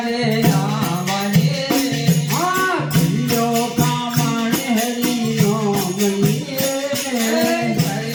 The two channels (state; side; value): identical; both; correlation 1.00